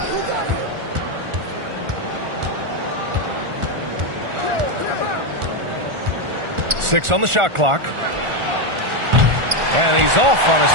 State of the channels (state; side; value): late; left; 1.4 ms